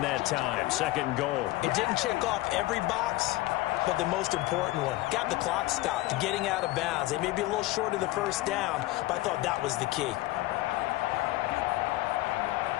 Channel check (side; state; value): right; quieter; 18.1 dB